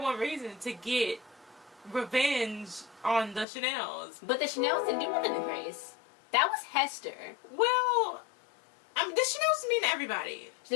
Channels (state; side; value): drops out; right; at 3.5 s